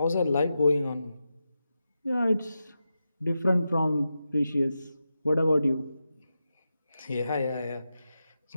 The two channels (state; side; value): inverted; both; correlation -0.89